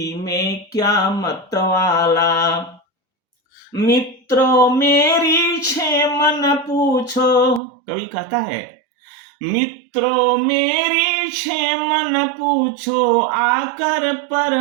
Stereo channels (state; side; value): drops out; left; at 7.6 s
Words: में क्या मतवाला। मित्रों मेरी क्षेमन पूछो, कवि कहता है, मित्रों मेरी क्षेमन पूछो, आकर पर